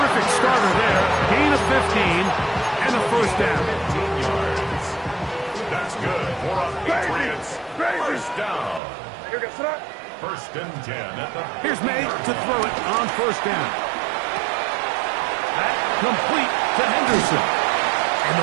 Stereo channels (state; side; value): drops out; left; at 8.8 s